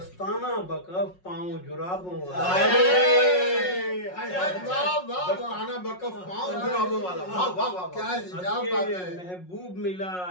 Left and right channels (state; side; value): late; right; 5.5 ms